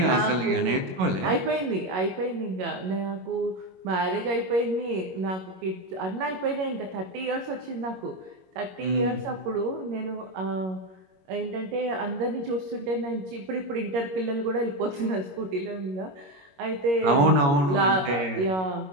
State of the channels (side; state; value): left; late; 21 ms